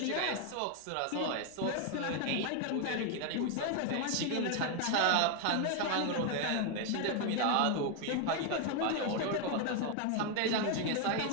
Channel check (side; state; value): both; different; correlation 0.01